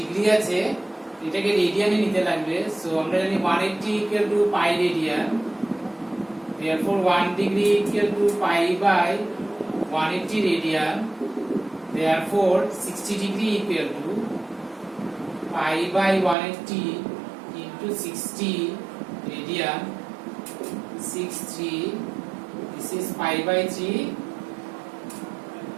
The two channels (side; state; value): left; drops out; at 16.4 s